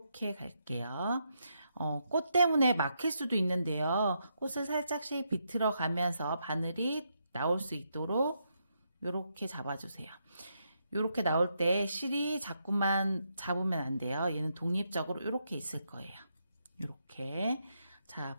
갈게요. 꽃 때문에 막힐 수도 있는데요. 꽃을 살짝씩 비틀어 가면서 바늘이 나올 수 있도록 이렇게 잡아주세요. 이렇게 나올 때 실이 자꾸만 잡으면 안 돼요. 얘는 독립적으로 이렇게 있을 거예요. 이렇게. 자,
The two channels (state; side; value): inverted; both; correlation -0.80